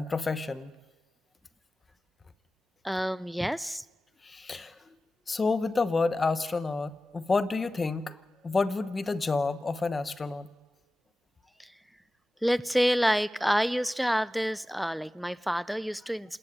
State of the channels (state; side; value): normal; both; correlation 0.95